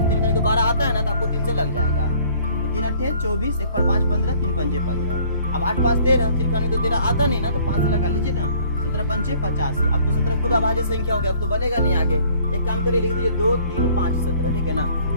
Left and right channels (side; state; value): both; inverted; correlation -0.56